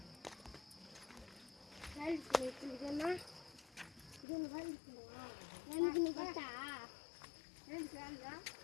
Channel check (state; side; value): drops out; right; at 4.2 s